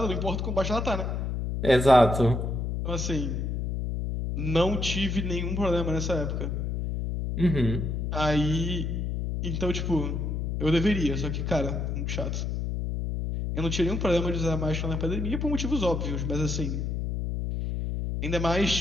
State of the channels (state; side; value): noise; left; hum, 2 dB below the sound